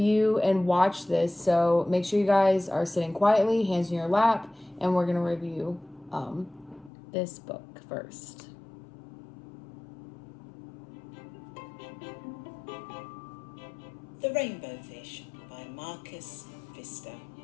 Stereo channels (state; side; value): drops out; right; at 6.9 s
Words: and watch this. So make sure you guys are sitting quietly, hands in your lap, and we're going to review this book first. The Rainbow Fish by Marcus Pfizer.